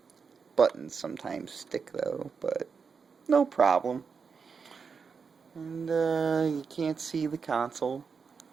Buttons sometimes stick, though, but no problem. And, you can't see the console,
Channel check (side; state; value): left; quieter; 5.6 dB